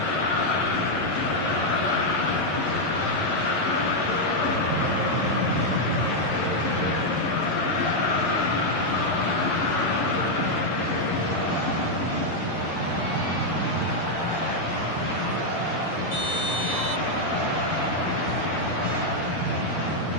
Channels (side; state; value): right; late; 11 ms